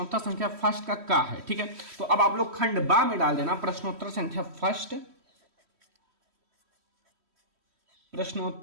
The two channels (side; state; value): left; late; 3.1 ms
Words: संख्या फर्स्ट का है, ठीक है। तो अब आप लोग खंड बा में डाल देना प्रश्नोत्तर संख्या फर्स्ट,